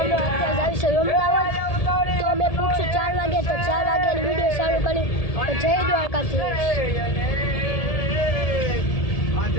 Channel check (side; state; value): right; late; 1.8 ms